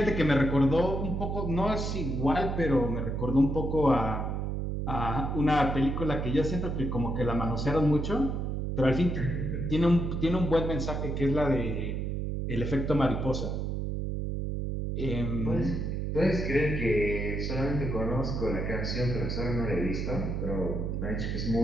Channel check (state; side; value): noise; right; hum, 2 dB below the sound